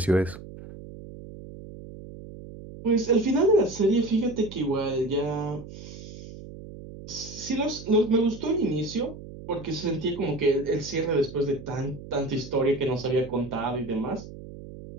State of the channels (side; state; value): right; noise; hum, 14 dB below the sound